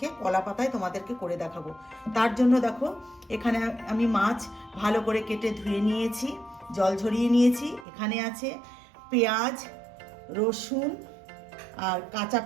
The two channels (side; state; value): left; drops out; at 7.9 s